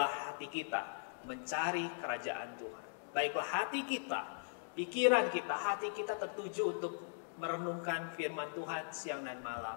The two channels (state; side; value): silent; right; digital silence